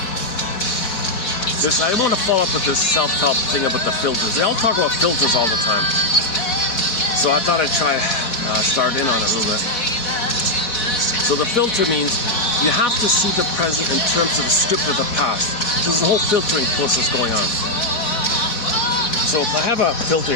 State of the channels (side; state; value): right; late; 4.1 ms